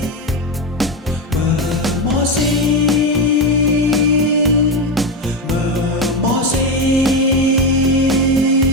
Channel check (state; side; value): normal; both; correlation 0.13